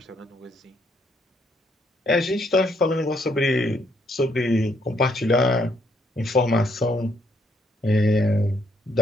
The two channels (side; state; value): both; normal; correlation 0.71